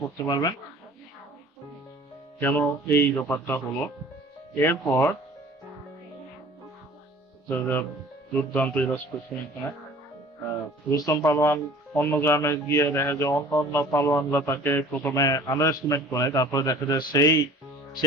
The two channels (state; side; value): normal; both; correlation 0.47